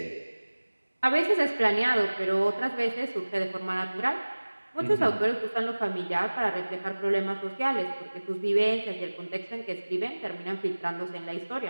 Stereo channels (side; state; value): both; inverted; correlation -1.00